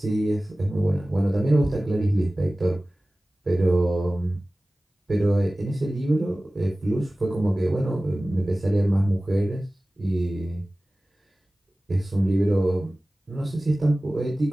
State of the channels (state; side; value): normal; both; correlation 0.97